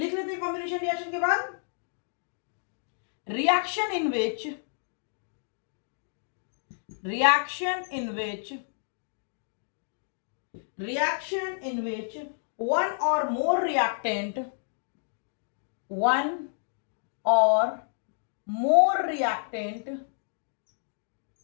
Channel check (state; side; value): silent; right; digital silence